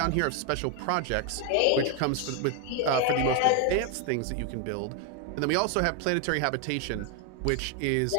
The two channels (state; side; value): different; both; correlation 0.01